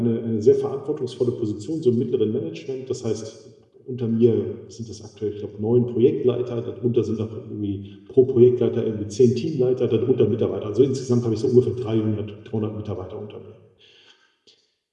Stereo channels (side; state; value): both; identical; correlation 1.00